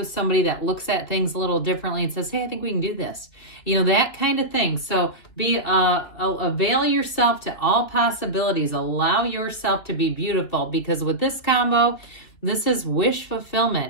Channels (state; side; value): late; right; 2.9 ms